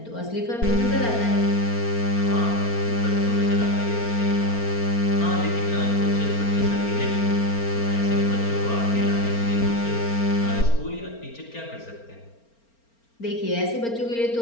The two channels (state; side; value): late; right; 4.4 ms